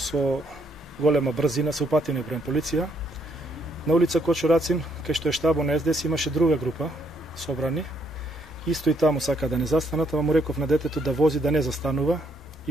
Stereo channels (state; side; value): normal; both; correlation 0.71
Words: голема брзина се упативме према полиција. На улица Кочурацин, кај што е штабот на СДС, имаше друга група собрани. Исто и таму сака да не застанат, ама му реков на детето да вози, да не застанува.